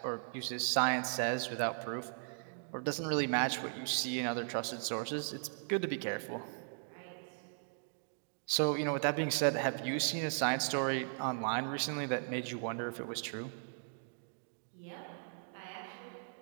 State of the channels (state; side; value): silent; left; digital silence